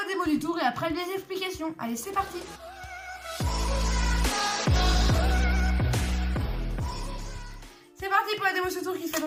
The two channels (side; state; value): both; identical; correlation 1.00